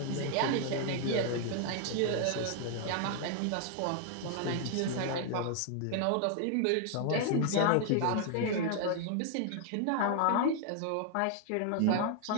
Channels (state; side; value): different; both; correlation 0.00